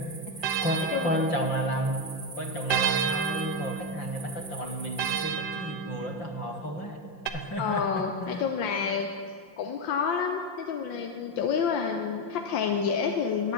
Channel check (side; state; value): right; late; 5.7 ms